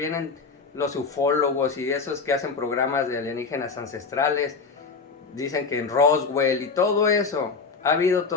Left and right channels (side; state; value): right; quieter; 4.7 dB